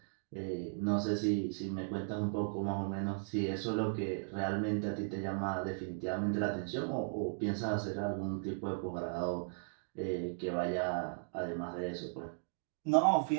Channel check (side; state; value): left; silent; digital silence